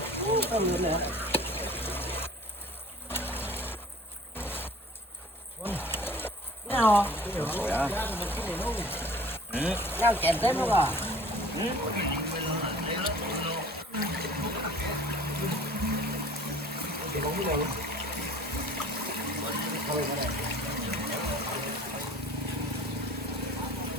Nào. Nhau chèn tới luôn à.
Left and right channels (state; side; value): normal; both; correlation 0.48